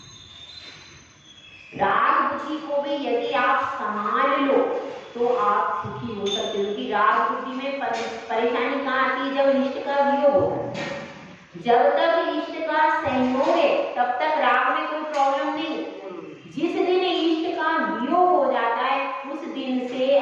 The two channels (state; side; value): identical; both; correlation 1.00